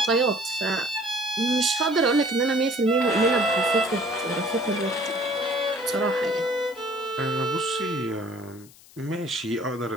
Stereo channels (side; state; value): left; noise; hiss, 24 dB below the sound